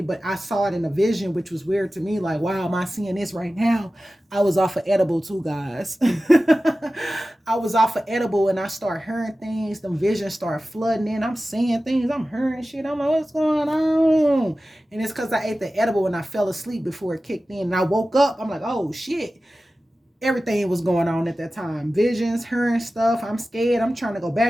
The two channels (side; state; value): both; normal; correlation 0.95